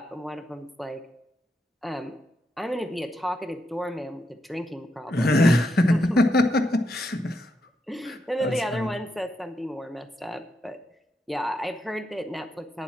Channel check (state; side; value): normal; both; correlation 0.82